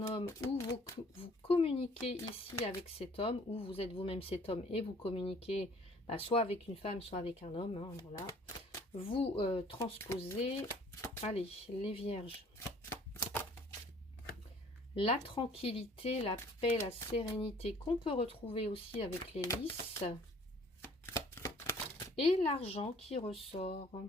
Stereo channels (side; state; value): both; normal; correlation 0.55